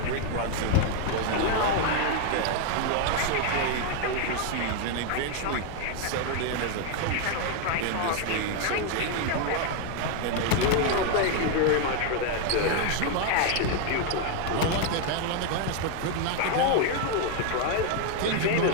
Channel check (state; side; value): different; both; correlation 0.01